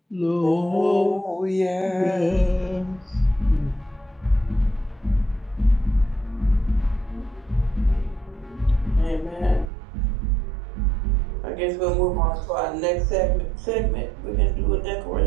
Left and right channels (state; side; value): drops out; left; at 9.7 s